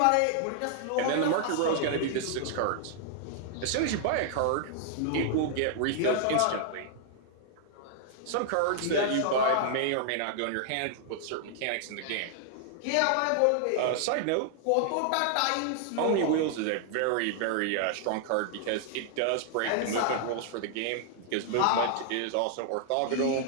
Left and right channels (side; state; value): both; different; correlation -0.01